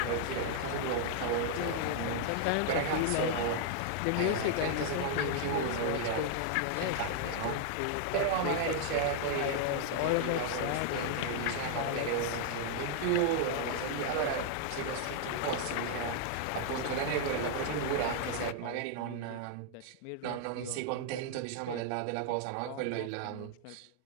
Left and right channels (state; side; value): different; both; correlation 0.00